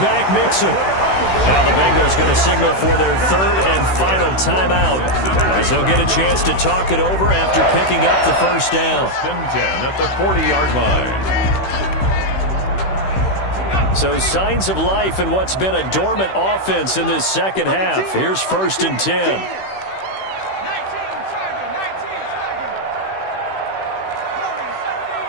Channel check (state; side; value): late; right; 16 ms